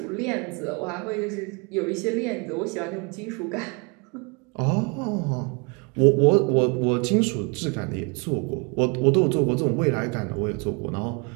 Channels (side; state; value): left; quieter; 31.3 dB